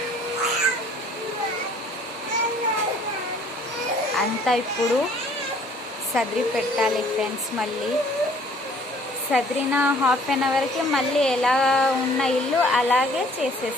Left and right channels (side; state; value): both; normal; correlation 0.57